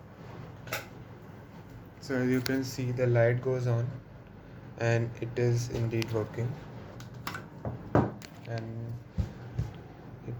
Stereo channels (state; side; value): identical; both; correlation 1.00